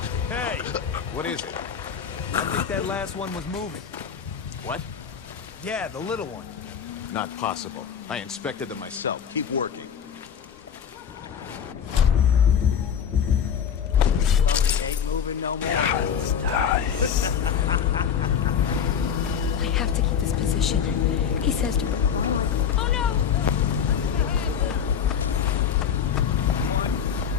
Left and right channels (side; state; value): right; quieter; 7.8 dB